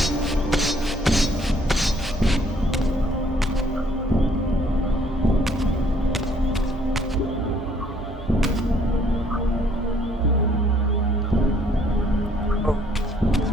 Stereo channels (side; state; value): both; normal; correlation 0.64